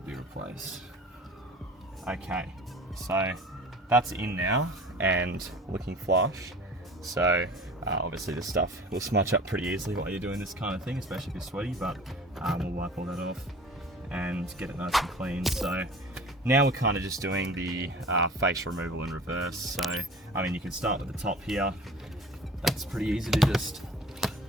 replaced. Okay, so that's in now and looking flush. So obviously this stuff will smudge up pretty easily while you're doing this kind of thing, especially if you're sweaty, but we'll wipe all that off and get it nice and clean. So now we're kind of just doing the face removal in reverse. So, I mean, you can start with the top here. That's pretty easy to just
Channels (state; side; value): normal; both; correlation 0.42